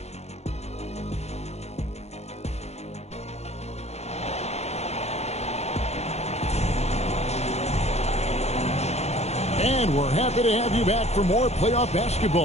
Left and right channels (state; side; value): late; right; 0.31 ms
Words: And we're happy to have you back for more playoff